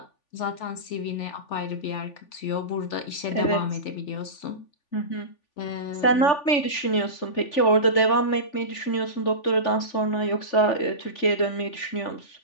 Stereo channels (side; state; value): right; late; 3.4 ms